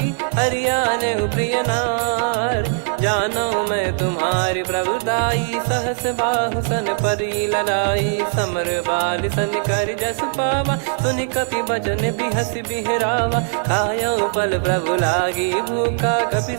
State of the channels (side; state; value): left; silent; 66 dB below the other